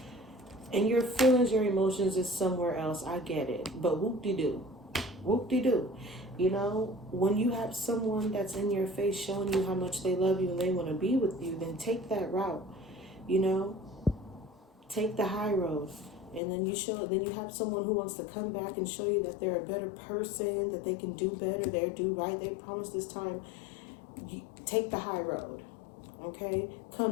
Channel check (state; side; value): drops out; right; at 16.4 s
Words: and your feelings, your emotions is somewhere else. I get it. But whoop-de-doo. Whoop-de-doo. You know, when you have someone that's in your face showing you how much they love you and they want to be with you, then take that route. You know, take the high road. And then you have someone who wants to come back and show you that they're a better person, that they can do better, they do right, they promise this time. You take the high road, okay?